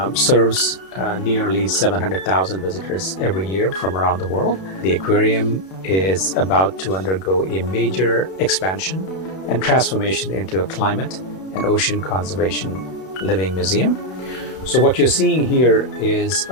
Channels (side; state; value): right; late; 32 ms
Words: serves nearly 700,000 visitors every year from around the world. The aquarium is about to undergo a major expansion and transformation into a climate and ocean conservation living museum. So what you're seeing here is